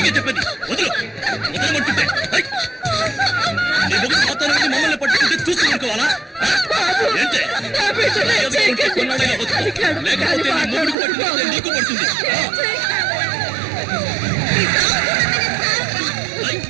చెప్పేది వదులు, వదలమంటుంటే నీ మొగుడు మాత్రం మమ్మల్ని పట్టుకుంటే చూస్తూ అనుకోవాలా? ఏంటే కొన్నాడైనా వద్దు, లేకపోతే నీ మొగుడికి పట్టుకుంటే నీకు పడుతుంది.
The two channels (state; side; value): drops out; left; at 11.0 s